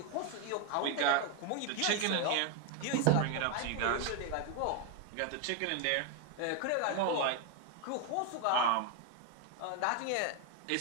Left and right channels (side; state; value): both; different; correlation 0.01